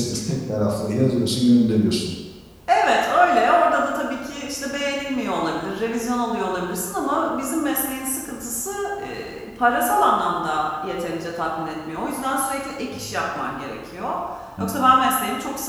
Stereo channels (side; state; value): both; identical; correlation 1.00